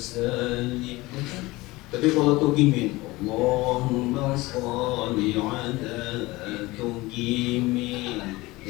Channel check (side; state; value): right; quieter; 20.8 dB